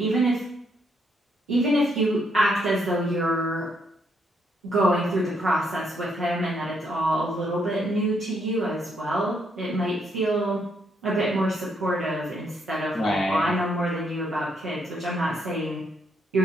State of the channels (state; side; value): normal; both; correlation 0.74